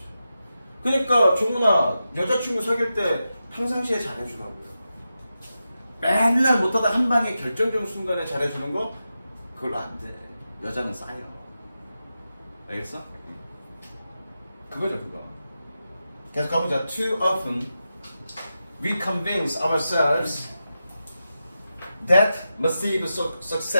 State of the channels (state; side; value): inverted; both; correlation -0.90